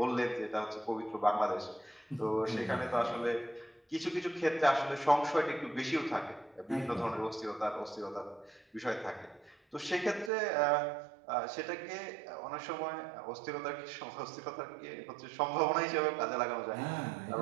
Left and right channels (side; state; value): left; drops out; at 10.3 s